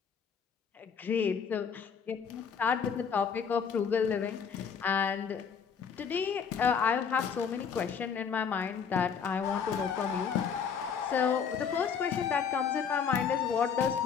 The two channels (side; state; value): right; quieter; 6.7 dB